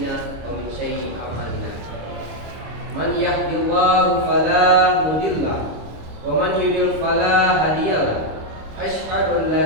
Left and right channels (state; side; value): late; left; 26 ms